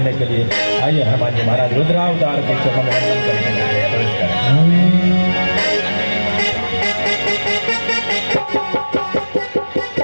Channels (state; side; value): inverted; both; correlation -1.00